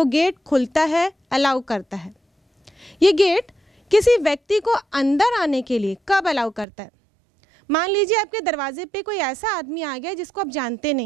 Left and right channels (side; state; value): left; drops out; at 6.7 s